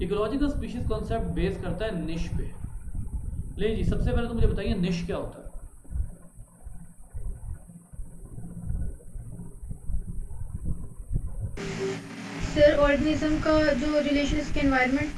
Ecological species concept base करता है निश पे। ले जी, सबसे पहले तो मुझे बताइए निश क्या होता है। सर ऑर्गेनिज्म का जो रिलेशन इसके एनवायरनमेंट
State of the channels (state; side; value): identical; both; correlation 1.00